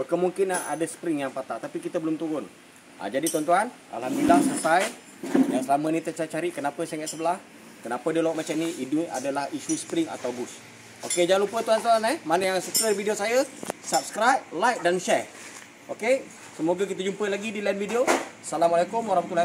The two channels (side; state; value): both; identical; correlation 1.00